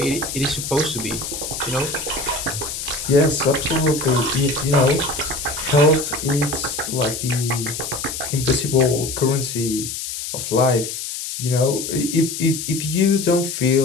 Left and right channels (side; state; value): left; noise; hiss, 6 dB below the sound